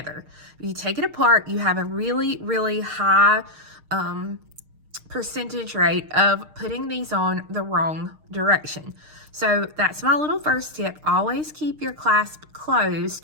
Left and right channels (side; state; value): left; late; 6.5 ms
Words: If you take it apart, you have a really, really high percentage rate of putting these on the wrong direction. So that's my little first tip. Always keep your clasp closed